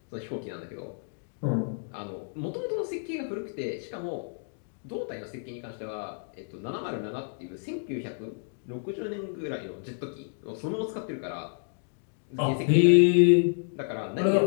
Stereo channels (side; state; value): right; silent; digital silence